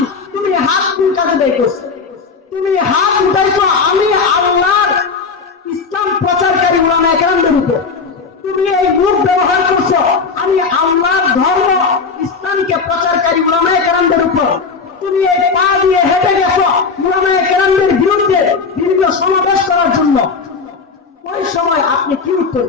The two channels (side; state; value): right; quieter; 4.9 dB